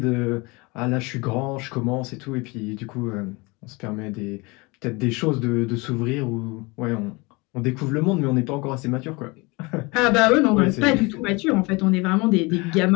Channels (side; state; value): right; quieter; 26.1 dB